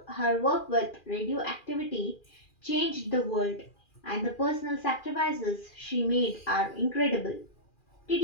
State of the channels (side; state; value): right; late; 2.4 ms